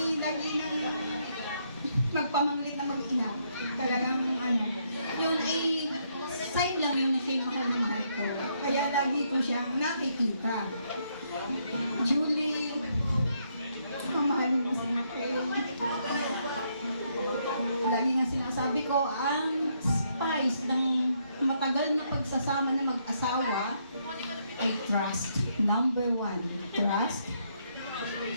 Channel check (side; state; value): both; inverted; correlation -0.74